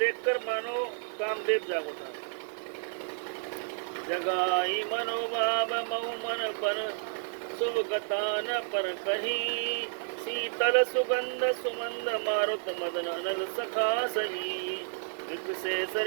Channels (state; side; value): silent; left; 57 dB below the other